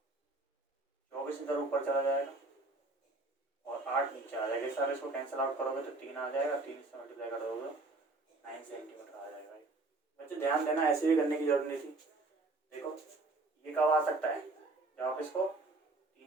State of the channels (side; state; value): left; quieter; 3.2 dB